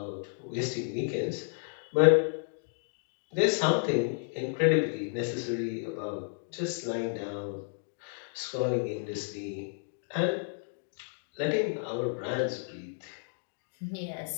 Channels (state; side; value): silent; right; digital silence